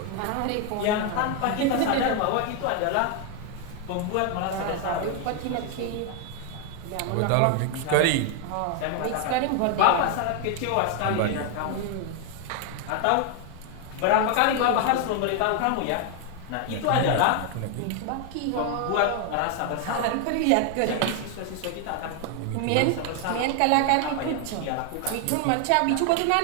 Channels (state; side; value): different; both; correlation 0.01